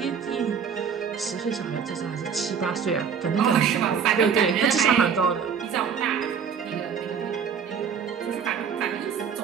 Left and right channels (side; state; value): left; quieter; 6.8 dB